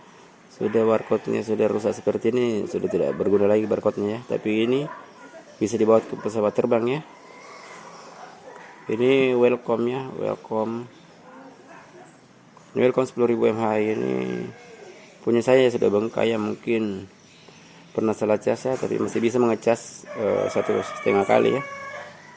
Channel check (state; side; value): identical; both; correlation 1.00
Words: sudah rusak seperti ini, sudah tidak berguna lagi barcode-nya ya. Tapi ini bisa dibawa ke pesawat terbang ya. Ini welcome 10.000 mAh. Ini punya saya sudah bengkak ya, mungkin pernah salah cas ya, tapi masih bisa mengecas 1,5 kali ya,